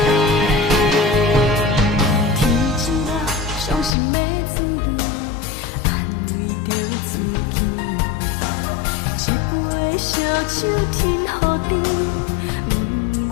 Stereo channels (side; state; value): right; drops out; at 4.0 s